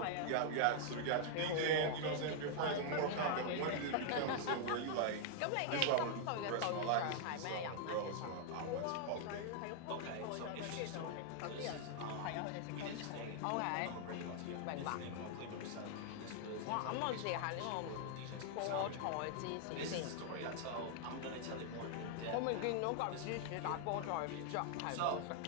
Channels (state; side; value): different; both; correlation 0.00